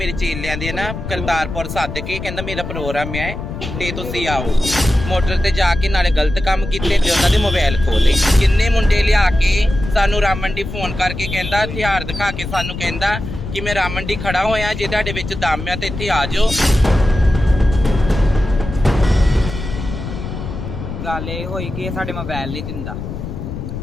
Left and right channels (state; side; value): noise; left; rumble, 7 dB below the sound